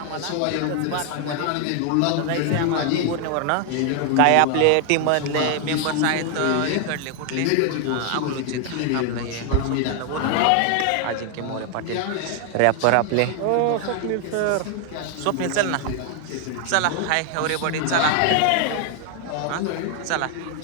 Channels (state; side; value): different; both; correlation 0.00